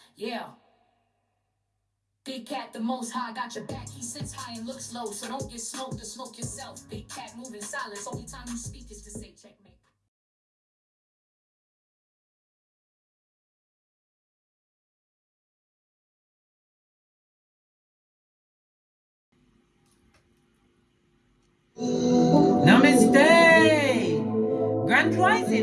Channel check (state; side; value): identical; both; correlation 1.00